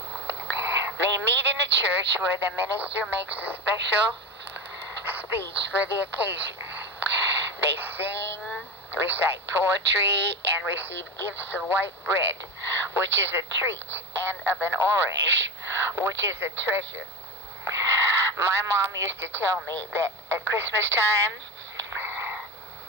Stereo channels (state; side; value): normal; both; correlation 0.21